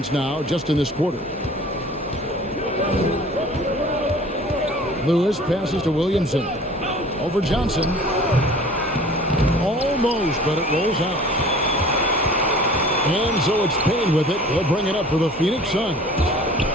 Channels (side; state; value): both; normal; correlation 0.46